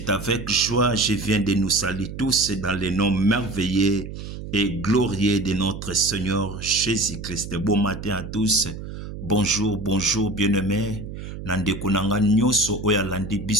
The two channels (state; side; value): noise; right; hum, 9 dB below the sound